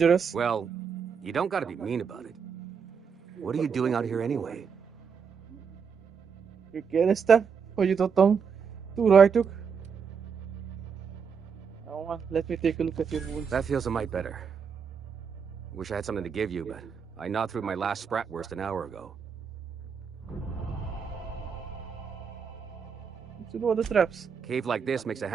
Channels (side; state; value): left; quieter; 6.4 dB